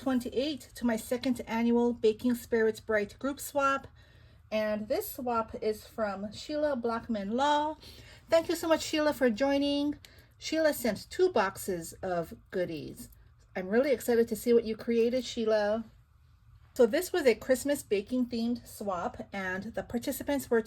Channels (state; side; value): identical; both; correlation 1.00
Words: to my second annual Baking Spirits Bright group swap. And this swap is from Sheila Blackman Law. Thank you so much, Sheila, for joining. Sheila sent 2 boxes of goodies. I'm really excited to see what you created, Sheila. So this was a Christmas baking themed swap, and the participants were